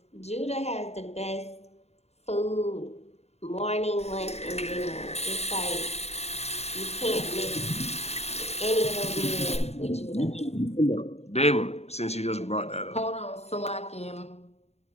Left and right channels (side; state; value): right; late; 0.31 ms